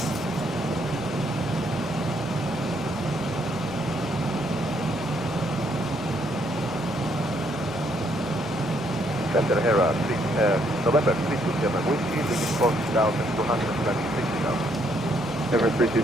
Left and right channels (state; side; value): normal; both; correlation 0.71